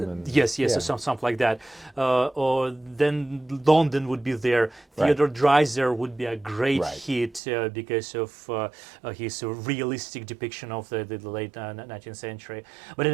yes, yeah. so something like that. Or then London would be there. Theodore Dreiser would be a great hit because of his realistic depiction of the late 19th century. But at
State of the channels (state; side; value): drops out; left; at 7.4 s